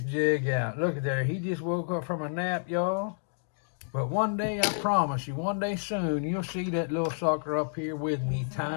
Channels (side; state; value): right; silent; digital silence